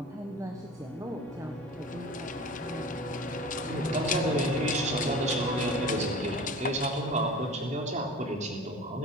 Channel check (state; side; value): normal; both; correlation 0.38